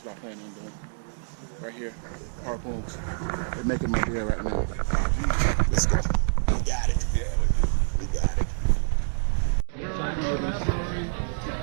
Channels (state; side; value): silent; left; digital silence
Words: what I plan on doing. Right here, Harpoons. They're making my beer right now. Let's go. We got it. Yeah, we do. We got it. Give